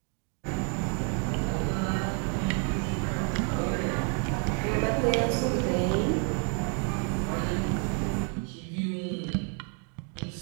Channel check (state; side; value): quieter; left; 36.8 dB